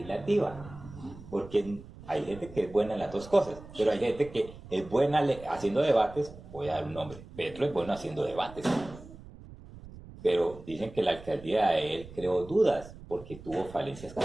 Porque hay gente que es buena en las dos cosas, pero hay gente que es buena haciendo debates, voy a dar un nombre, Petro es bueno haciendo debates. Pero dicen que la alcaldía de él creó dudas porque tuvo falencias con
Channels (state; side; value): noise; right; rumble, 17 dB below the sound